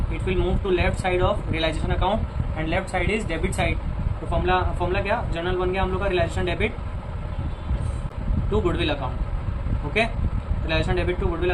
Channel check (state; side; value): identical; both; correlation 1.00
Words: it will move to left side of realization account and left side is debit side. तो फॉर्मूला क्या, जनरल बन गया हम लोग का, realization debit to goodwill account. Okay, realization debit to goodwill